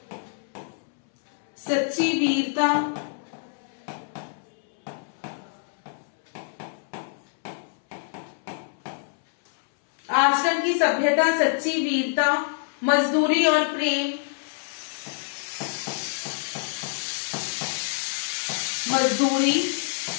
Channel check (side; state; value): right; silent; 60 dB below the other